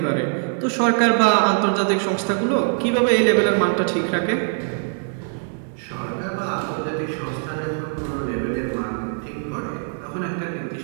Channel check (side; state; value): left; silent; digital silence